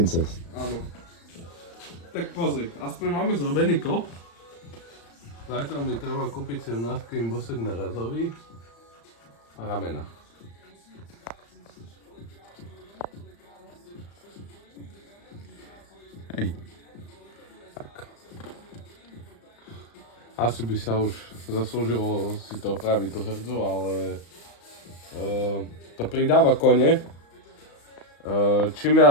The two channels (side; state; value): right; late; 35 ms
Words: Áno. Tak pozri, aspoň máme zrobený kop. Zajtra mi treba kúpiť 17 bosek na razový a ramena. Hej. Tak. Asi by sa už zaslúžilo si to opraviť tú hrdzu, ale to pridáva kone. Čím